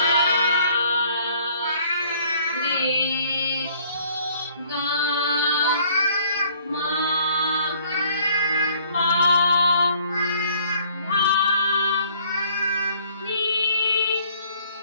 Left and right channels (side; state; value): both; inverted; correlation -0.59